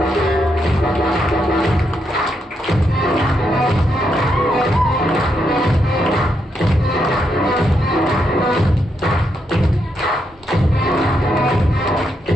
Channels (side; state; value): both; normal; correlation 0.80